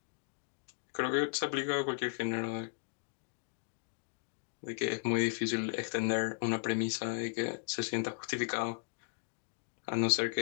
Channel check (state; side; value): silent; right; digital silence